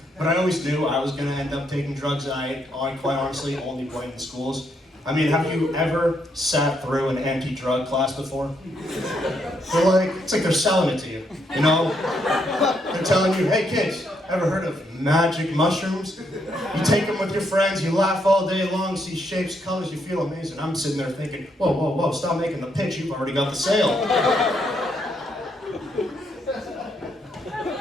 But I always knew I was gonna end up taking drugs, and I quite honestly only blamed the schools. I mean, have you ever sat through an anti-drug class before? It's like they're selling it to you, you know? They're telling you, hey kids, ever heard of magic mushrooms? You take them with your friends, you laugh all day long, see shapes, colors, you feel amazing. I'm sitting there thinking, whoa, whoa, whoa, stop making the pitch, you've already got the sale.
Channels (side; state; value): both; normal; correlation 0.76